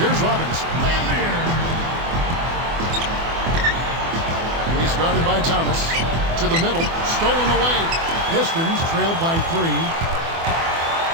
Here's Robinson. He's guarded by Thomas. To the middle, stolen away. Pistons trailed by 3.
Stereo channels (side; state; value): left; late; 24 ms